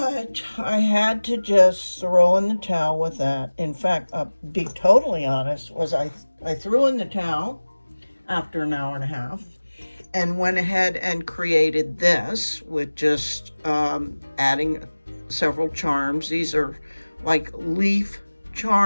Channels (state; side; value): inverted; both; correlation -1.00